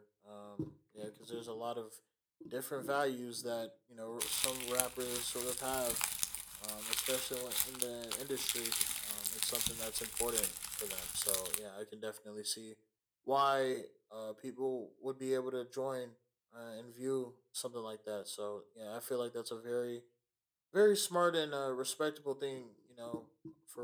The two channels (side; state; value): both; identical; correlation 1.00